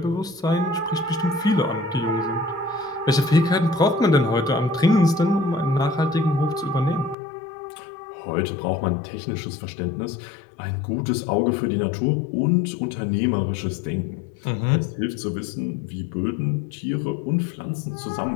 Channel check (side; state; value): right; drops out; at 7.2 s